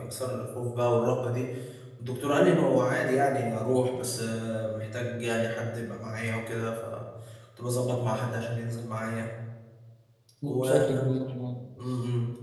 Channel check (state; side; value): identical; both; correlation 1.00